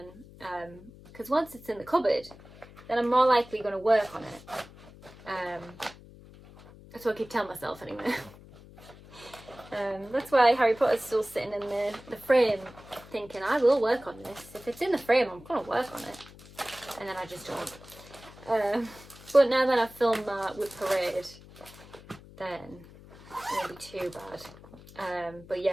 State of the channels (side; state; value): left; noise; hum, 20 dB below the sound